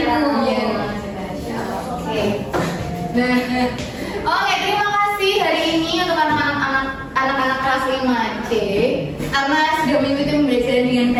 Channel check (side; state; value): both; identical; correlation 1.00